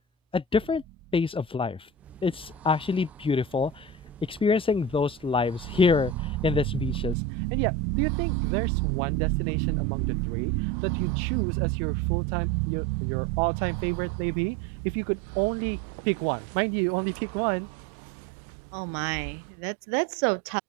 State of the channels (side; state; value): left; drops out; at 7.2 s